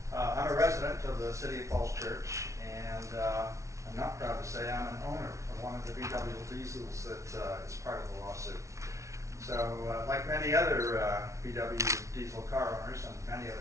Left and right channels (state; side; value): late; left; 0.14 ms